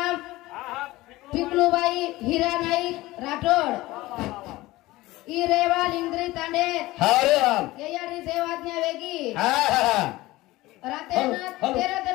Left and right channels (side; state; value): right; quieter; 18.7 dB